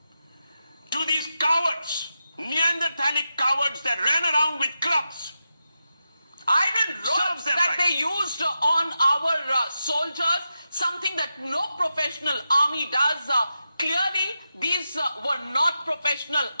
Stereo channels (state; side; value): inverted; both; correlation -0.89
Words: to these cowards, Neanderthalic cowards that ran around with clubs. Iron rods that they used on our soldiers, something that no professional army does. Clearly, these were not professional